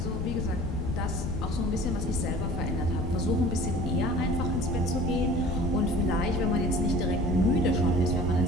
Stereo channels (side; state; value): left; noise; rumble, 2 dB below the sound